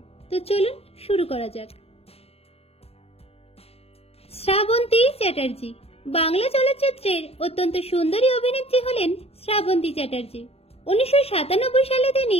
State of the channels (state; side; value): late; right; 0.29 ms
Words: তো চলুন শুরু করা যাক। শ্রাবন্তী চ্যাটার্জি। বাংলা চলচ্চিত্রের অত্যন্ত সুন্দরী অভিনেত্রী হলেন শ্রাবন্তী চ্যাটার্জি। 1997 সালে